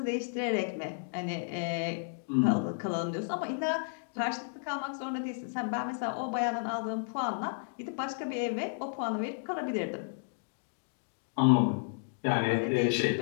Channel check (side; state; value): right; silent; digital silence